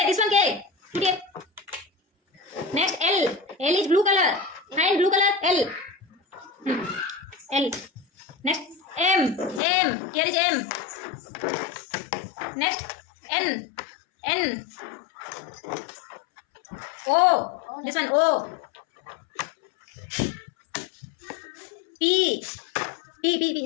This one K. Put here. Next L. L is blue color. Find blue color. L. L. Next M. Here is M. Next N. O. This one O. P.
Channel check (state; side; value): drops out; right; at 9.6 s